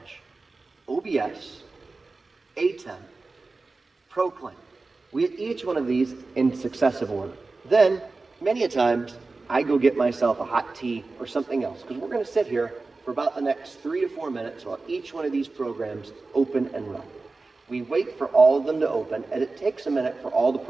OBS, ATEM, Proclaim. We hit each one of these in successive order. Then, many a times, I go get myself a hot tea or something else, because we're going to sit here for about the next 3 to 4 minutes while each one of these programs open and run. We wait for all of them to open, and it takes a minute for all the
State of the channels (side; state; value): left; quieter; 3.6 dB